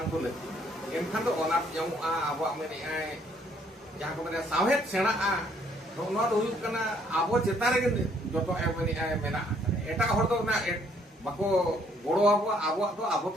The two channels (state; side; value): normal; both; correlation 0.65